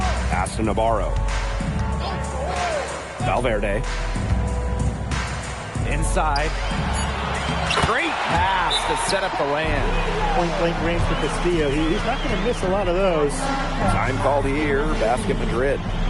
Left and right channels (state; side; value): identical; both; correlation 1.00